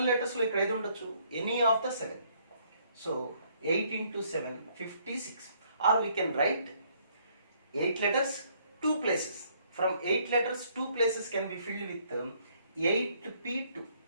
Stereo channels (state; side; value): inverted; both; correlation -0.66